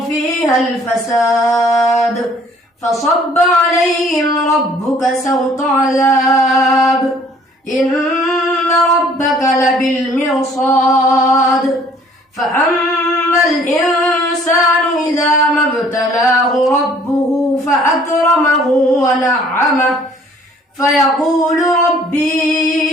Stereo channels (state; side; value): normal; both; correlation 0.57